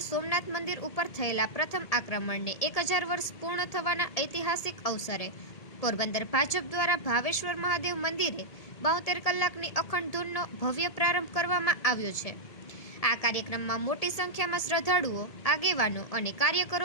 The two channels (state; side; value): late; right; 1.8 ms